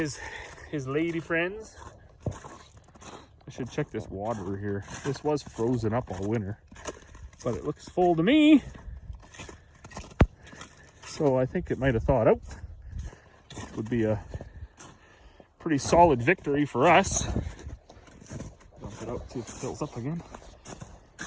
lady friends. I should check this water here. This was frozen up all winter, but it looks full to me. So I think it might have thawed out. Would be a pretty solid victory for us. Dump it out, see if it fills up again.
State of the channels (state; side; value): identical; both; correlation 1.00